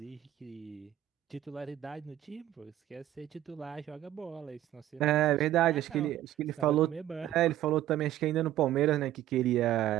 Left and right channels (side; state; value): left; quieter; 12.8 dB